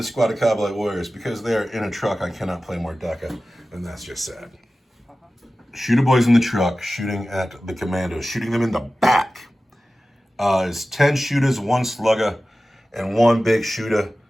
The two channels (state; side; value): normal; both; correlation 0.95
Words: squad of Kabbalite warriors. Because they are in a truck, I cannot play more Deca, and that's just sad. Shooter boys in the truck shooting at the commandos, shooting them in the back. Is 10 shooters, 1 slugger, and 1 big shooter